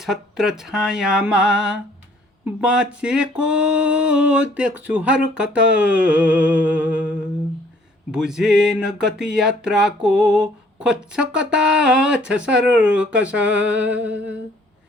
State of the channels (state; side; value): normal; both; correlation 0.60